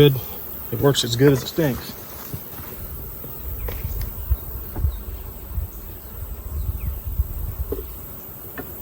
It works as good as it stinks.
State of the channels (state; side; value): identical; both; correlation 1.00